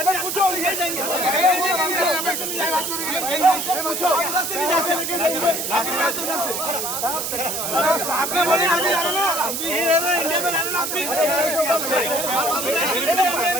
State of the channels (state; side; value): noise; right; hiss, 3 dB below the sound